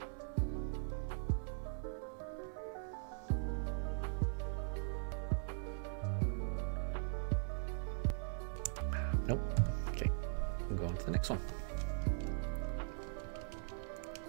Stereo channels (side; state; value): left; silent; 51 dB below the other